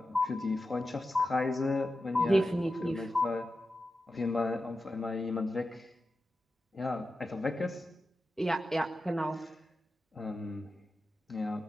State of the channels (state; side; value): normal; both; correlation 0.91